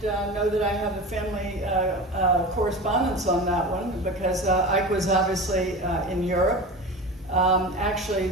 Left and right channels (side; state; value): both; normal; correlation 0.31